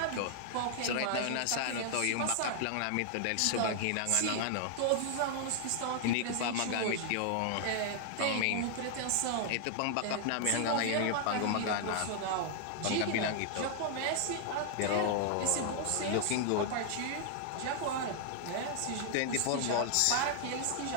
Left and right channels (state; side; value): different; both; correlation 0.00